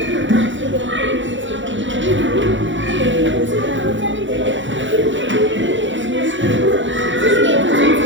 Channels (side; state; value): left; late; 0.55 ms